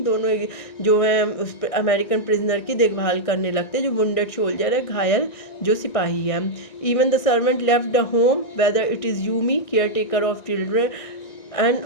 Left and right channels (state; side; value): late; right; 1.6 ms